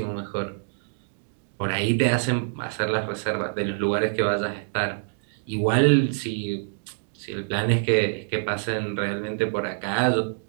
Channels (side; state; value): left; silent; digital silence